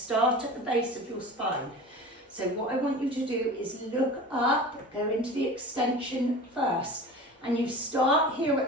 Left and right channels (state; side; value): normal; both; correlation 0.36